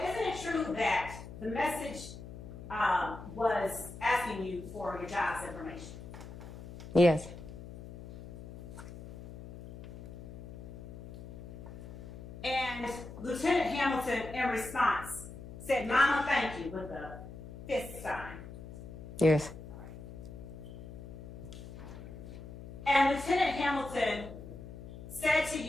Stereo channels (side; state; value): left; noise; hum, 13 dB below the sound